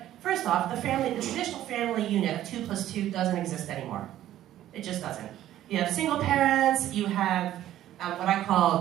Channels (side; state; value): left; quieter; 12.9 dB